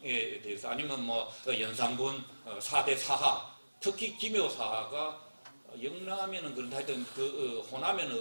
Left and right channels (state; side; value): inverted; both; correlation -1.00